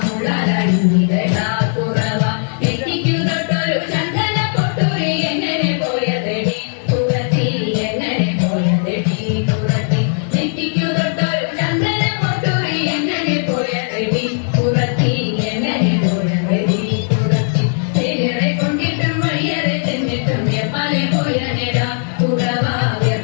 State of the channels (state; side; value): silent; right; 68 dB below the other